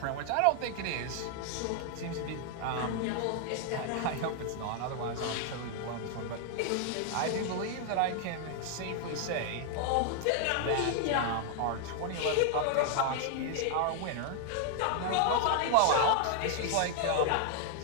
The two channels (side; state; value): both; different; correlation 0.00